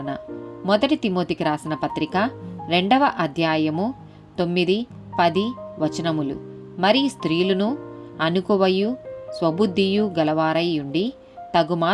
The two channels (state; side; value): identical; both; correlation 1.00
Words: మొదటి తిమోతికి రాసిన పత్రిక 2వ అధ్యాయము 9-10 వచనములు. మరి స్త్రీలును అనుకువయు స్వబుద్ధియు గలవారై ఉండి